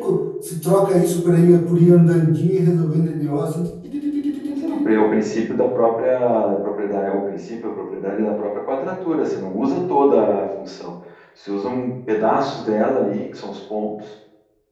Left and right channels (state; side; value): identical; both; correlation 1.00